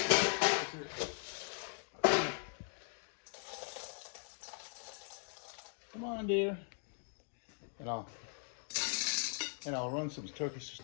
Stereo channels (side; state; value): right; silent; 51 dB below the other